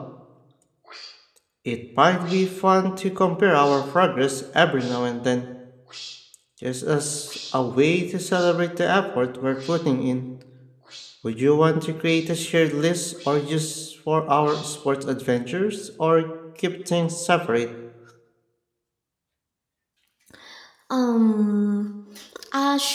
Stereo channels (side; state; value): both; identical; correlation 1.00